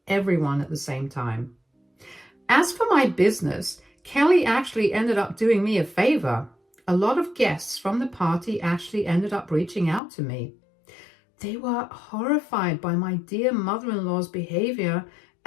everyone at the same time. As for my business, Kelly actually ended up doing me a favor. A lot of guests from the party actually ended up reaching out to me. They were horrified by my dear mother-in-law's behavior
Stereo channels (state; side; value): drops out; right; at 10.0 s